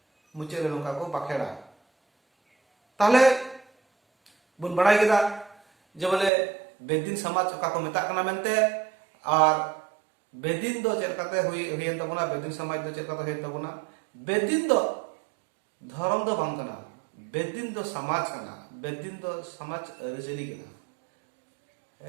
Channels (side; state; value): left; drops out; at 6.3 s